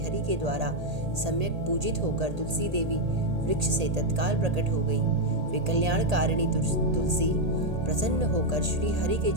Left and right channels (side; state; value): left; late; 1.8 ms